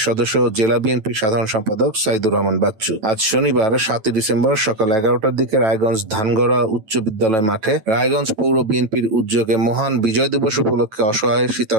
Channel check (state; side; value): late; left; 9.1 ms